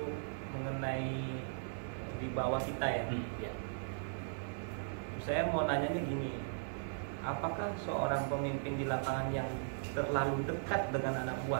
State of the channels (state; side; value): silent; left; 52 dB below the other